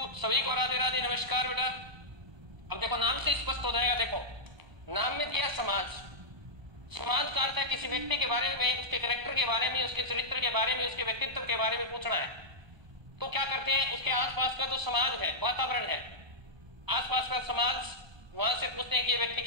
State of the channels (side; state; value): left; late; 1.3 ms